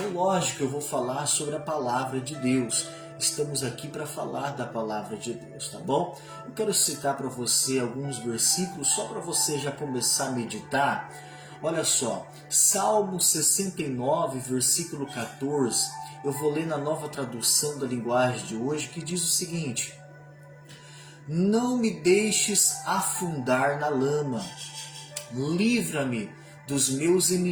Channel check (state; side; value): identical; both; correlation 1.00